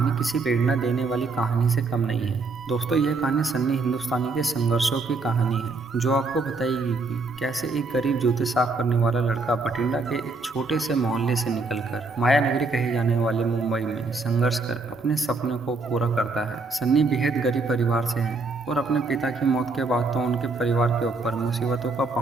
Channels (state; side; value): quieter; left; 3.7 dB